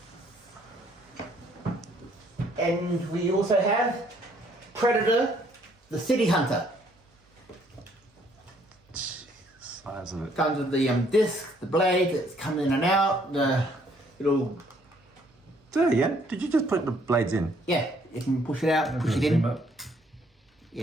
And we also have Predator, the City Hunter. Size of it. Comes with the disc, the blade that's coming in and out, the little, There, yeah. Did you just put the blades in? yeah, you can push it out, push it in.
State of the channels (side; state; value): both; normal; correlation 0.65